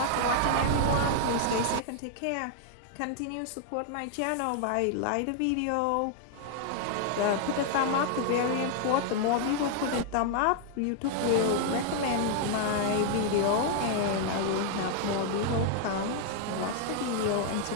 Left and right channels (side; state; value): both; different; correlation 0.00